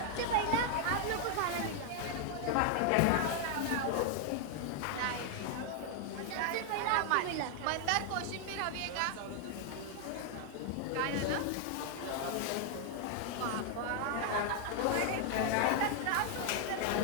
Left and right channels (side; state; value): both; different; correlation 0.00